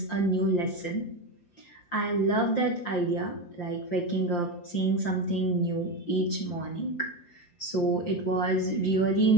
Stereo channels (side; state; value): right; late; 5.7 ms